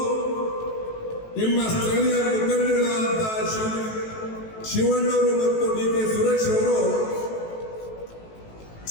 ನಿಮ್ಮ ಸ್ಥಳೀಯ ಮುಖಂಡಗಳಾದಂತಹ ಶಿವಣ್ಣವರು ಮತ್ತು ಡಿ ಕೆ ಸುರೇಶ್ ಅವರು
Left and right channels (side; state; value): right; late; 18 ms